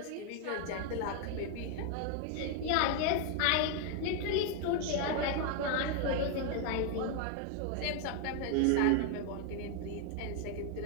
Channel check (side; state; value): both; different; correlation 0.00